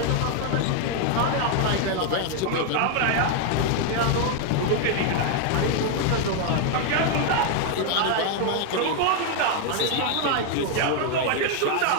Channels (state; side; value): different; both; correlation 0.00